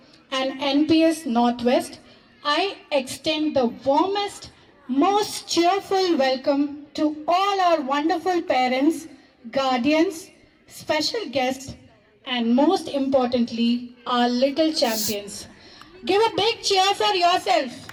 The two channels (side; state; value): both; identical; correlation 1.00